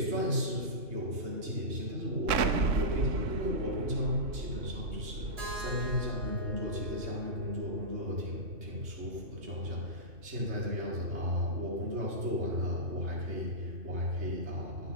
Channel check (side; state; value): left; late; 3.6 ms